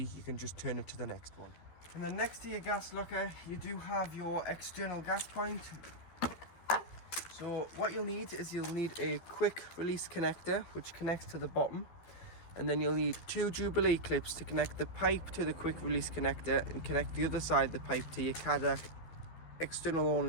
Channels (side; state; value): right; late; 13 ms